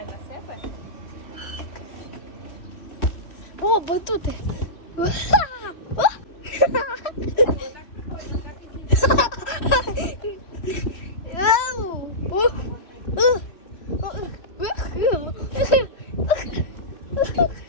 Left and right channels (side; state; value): right; late; 3.1 ms